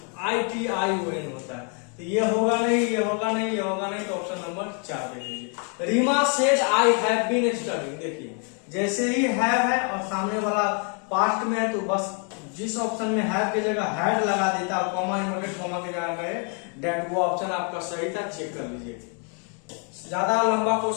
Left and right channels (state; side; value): quieter; right; 39.6 dB